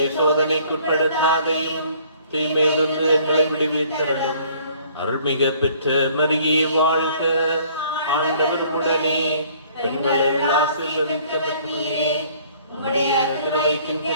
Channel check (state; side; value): inverted; both; correlation -0.57